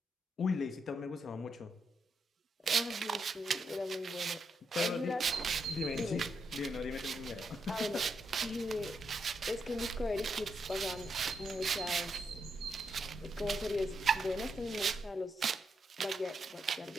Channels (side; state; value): both; normal; correlation 0.81